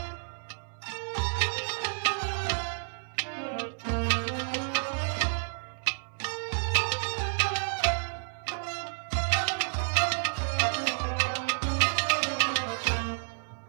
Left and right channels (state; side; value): silent; left; digital silence